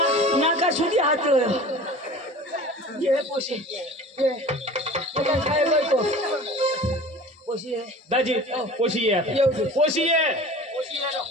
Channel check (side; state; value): both; normal; correlation 0.40